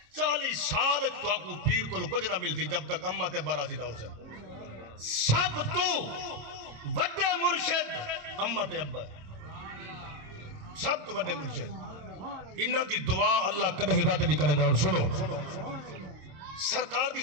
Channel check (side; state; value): left; late; 26 ms